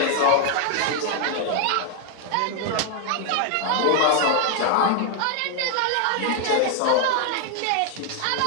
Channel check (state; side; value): different; both; correlation 0.00